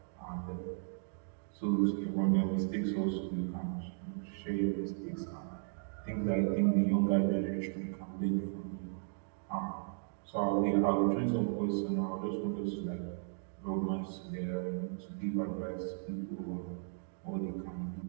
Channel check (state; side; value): silent; left; digital silence